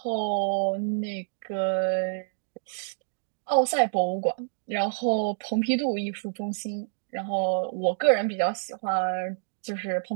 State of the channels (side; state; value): left; silent; digital silence